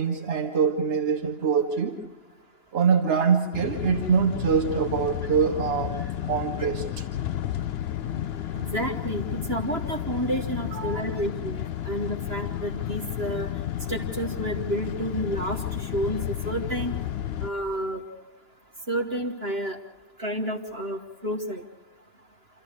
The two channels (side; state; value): left; late; 2.9 ms